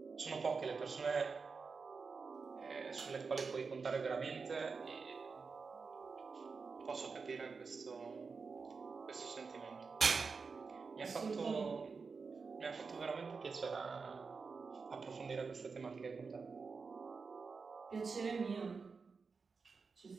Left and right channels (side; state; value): left; quieter; 4.9 dB